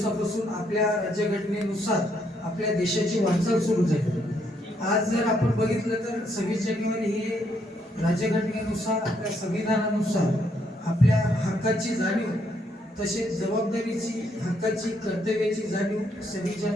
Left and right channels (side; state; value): both; normal; correlation 0.73